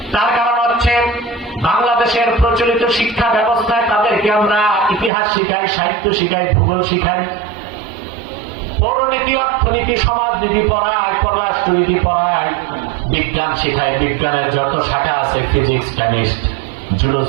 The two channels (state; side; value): drops out; left; at 5.1 s